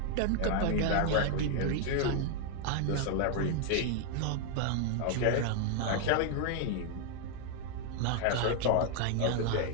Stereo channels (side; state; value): both; different; correlation 0.00